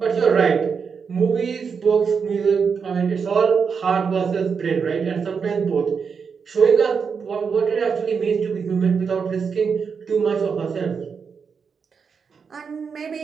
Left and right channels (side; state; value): left; quieter; 6.0 dB